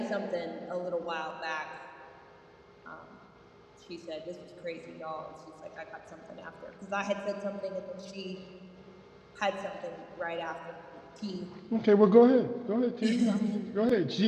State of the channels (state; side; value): identical; both; correlation 1.00